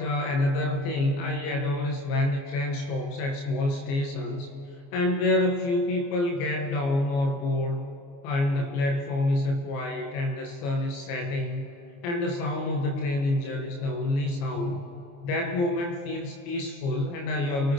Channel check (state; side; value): late; right; 29 ms